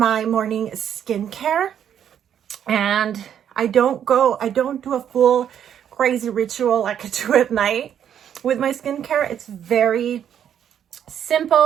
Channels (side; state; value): left; quieter; 9.3 dB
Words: morning skincare. And I don't do a full crazy ritual like I do at night with my skincare. It's very